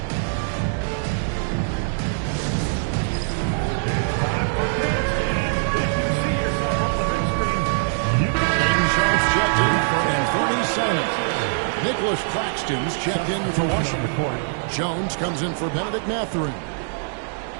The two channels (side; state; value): left; silent; digital silence